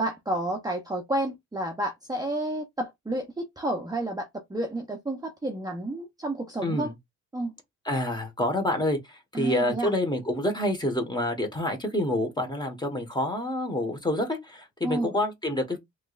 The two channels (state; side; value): normal; both; correlation 0.50